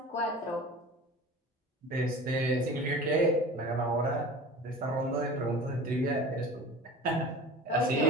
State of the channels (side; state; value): both; normal; correlation 0.38